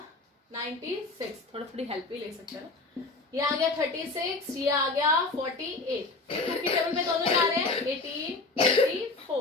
96, थोड़ी हेल्प भी ले सकते हैं ना, ये आ गया 36, ये आ गया 48, 2 की टेबल पे दोनों जा रहे हैं 18,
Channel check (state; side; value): quieter; right; 3.4 dB